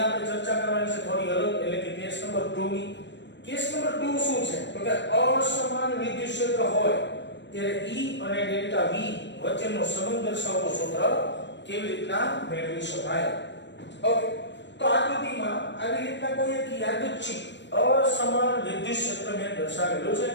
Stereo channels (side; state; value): right; late; 0.52 ms